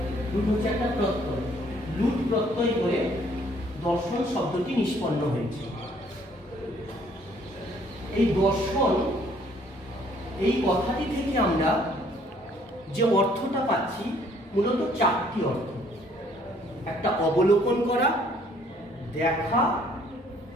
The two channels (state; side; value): normal; both; correlation 0.62